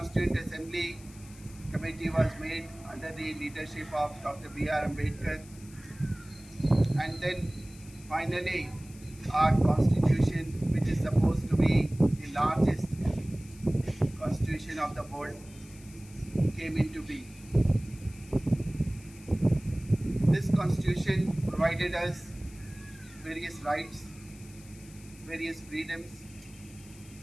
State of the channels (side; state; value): left; noise; hiss, 22 dB below the sound